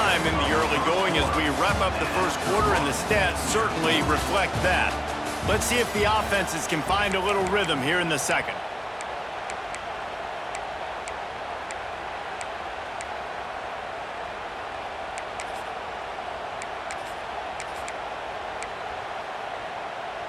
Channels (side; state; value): both; identical; correlation 1.00